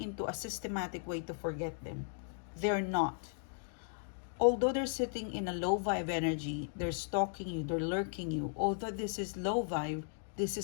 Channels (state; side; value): silent; right; digital silence